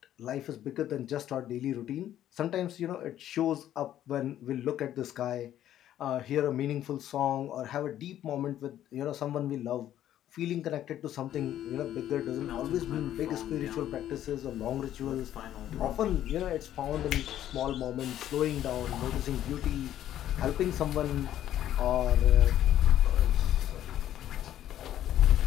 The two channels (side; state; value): right; quieter; 11.8 dB